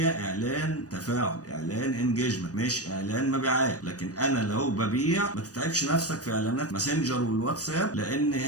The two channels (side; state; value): right; late; 0.67 ms